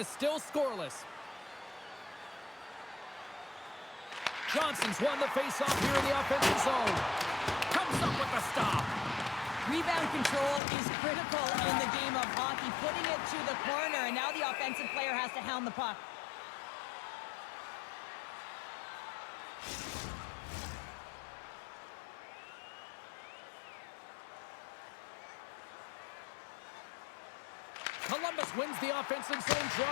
still scoreless. Johnson's won the faceoff here in the offensive zone. Comes up with the stop. Rebound control is critical in the game of hockey. Putting it to the corner, and now the offensive player has to hound the puck. Columbus wins the offensive zone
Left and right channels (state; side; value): drops out; right; at 10.6 s